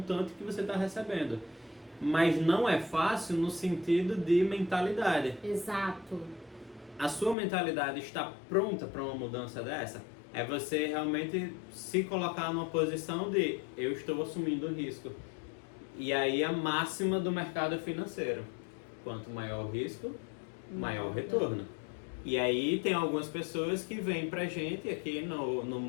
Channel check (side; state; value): right; drops out; at 7.4 s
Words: que você está recebendo. Mas não é fácil no sentido de mentalidade. Exato. A sua mentalidade está pronta para uma mudança dessa? É você realmente se colocar numa posição de eu estou assumindo o risco. E aí a máxima do mercado financeiro. Quanto maior o risco, maior o retorno. E aí tem algumas pessoas que vêm pra gente aqui no